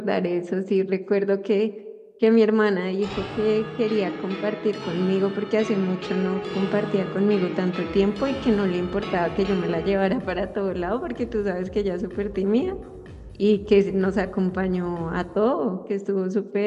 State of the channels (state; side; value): identical; both; correlation 1.00